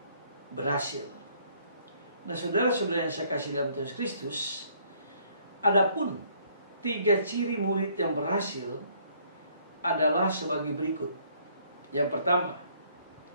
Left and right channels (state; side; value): inverted; both; correlation -0.63